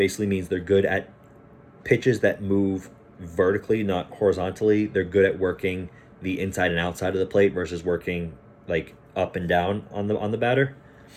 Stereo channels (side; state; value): both; identical; correlation 1.00